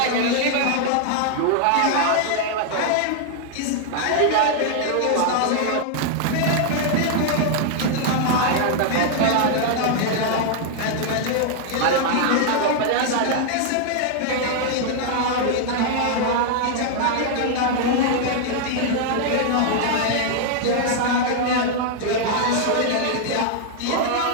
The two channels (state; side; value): different; both; correlation 0.00